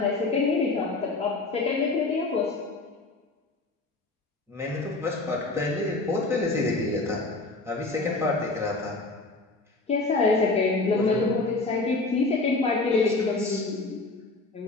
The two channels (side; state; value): right; quieter; 3.4 dB